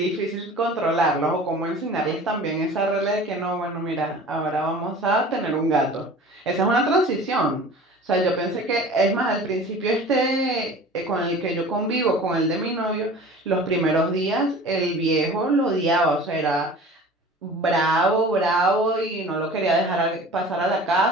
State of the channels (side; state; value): both; normal; correlation 0.42